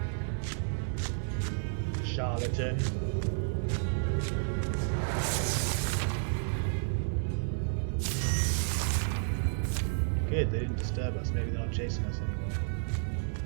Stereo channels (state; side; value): silent; left; digital silence